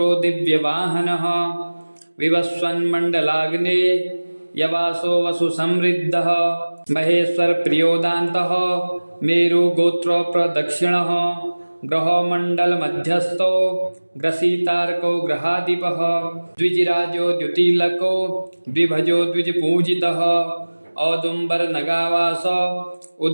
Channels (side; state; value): both; inverted; correlation -1.00